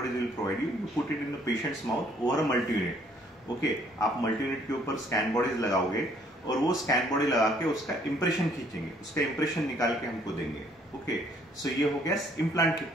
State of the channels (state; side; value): normal; both; correlation 0.63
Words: bodies will provide you. You put it in the patient's mouth over a multi-unit. Okay, आप multi-unit के ऊपर scan bodies लगाओगे और वो scan body लगा के उसका impression खींचेंगे, उसका इंप्रेशन निकाल के हमको देंगे. ओके, सो ये हो गया इम्प्लांट की